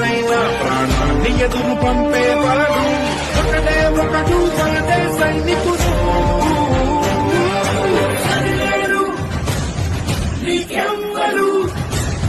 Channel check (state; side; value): identical; both; correlation 1.00